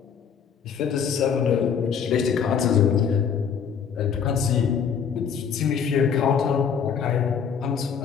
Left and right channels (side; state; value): right; quieter; 7.0 dB